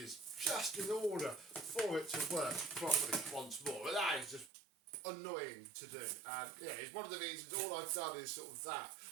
just in order for it to work properly once more. But that is just annoying to do. And yeah, it's one of the reasons all I've done is sort of that.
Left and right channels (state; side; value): drops out; left; at 4.5 s